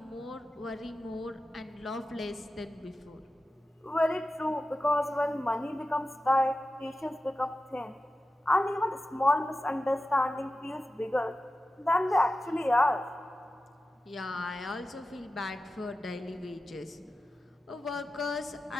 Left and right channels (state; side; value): normal; both; correlation 0.93